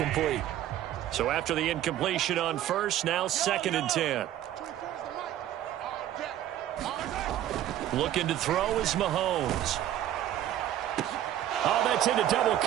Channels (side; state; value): left; quieter; 12.3 dB